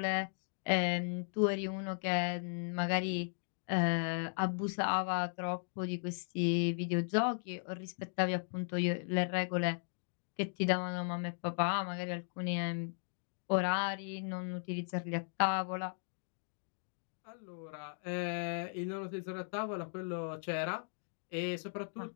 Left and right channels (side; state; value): right; silent; digital silence